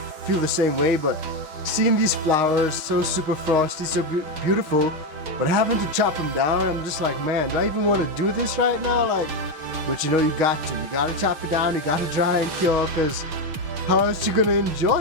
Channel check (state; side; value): late; left; 6.4 ms